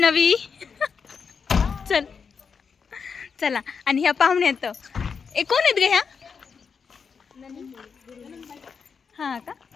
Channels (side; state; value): right; quieter; 5.8 dB